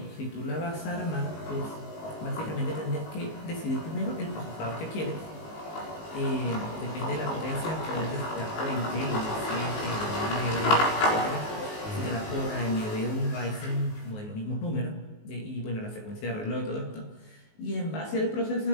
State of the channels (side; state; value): right; late; 19 ms